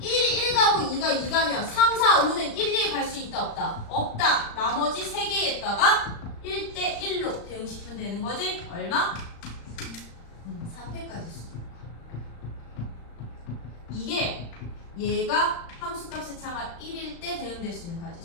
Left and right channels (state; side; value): late; right; 35 ms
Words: 1이 1 가고 2가 2 가면 3, 4, 5는 1, 2에 갈 수 있다 없다? 없다. 나머지 3개에다가 1대1로 대응시키면 되는 거지? 얼마? 3패까지 수. 이게 얘가 함수값의 차가 1일 때 대응될 수 있는